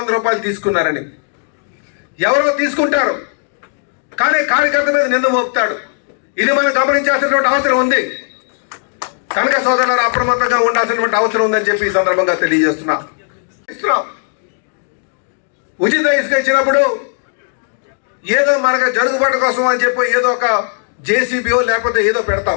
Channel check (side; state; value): right; silent; digital silence